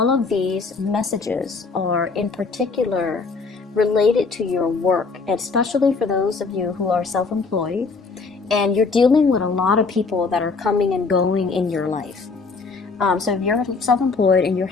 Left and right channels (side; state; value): right; quieter; 4.4 dB